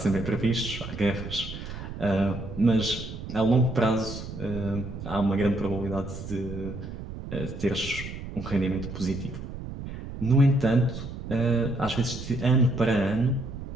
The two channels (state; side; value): noise; right; rumble, 9 dB below the sound